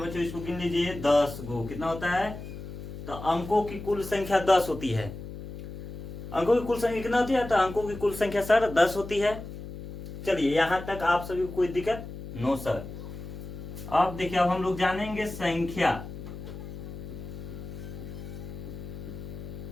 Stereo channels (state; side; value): noise; left; hum, 10 dB below the sound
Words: इसको गिन लीजिए 10 गो। कितना होता है? तो अंकों की कुल संख्या 10 होती है। अंकों की कुल संख्या कितना होती है? तो अंकों की कुल संख्या सर 10 होती है। चलिए यहां तक आप सभी को कोई दिक्कत? No sir. अब देखिए अब हम लोग जानेंगे संख्या।